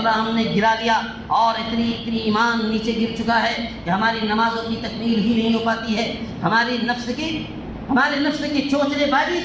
ہم نے گرا لیا اور اتنی ایمان نیچے گر چکا ہے کہ ہماری نمازوں کی تکمیل ہی نہیں ہو پاتی ہے. ہمارے نفس کی چوچلے بازی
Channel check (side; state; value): both; identical; correlation 1.00